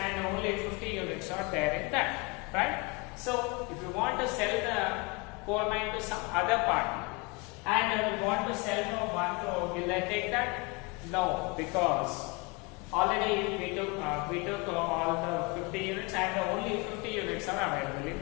only 50 units are there in that, right? So if you want to sell the coal mine to some other party and we want to sell for 1 crore, will they take that? No, because already we took all the 50 units and only 50 units are available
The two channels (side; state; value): right; quieter; 28.4 dB